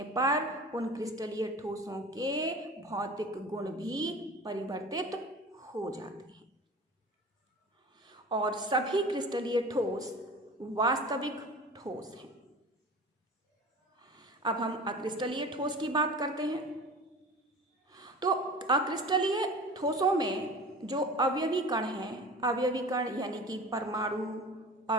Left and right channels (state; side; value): normal; both; correlation 0.37